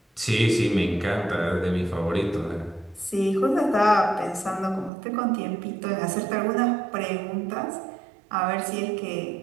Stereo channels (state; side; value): drops out; left; at 4.9 s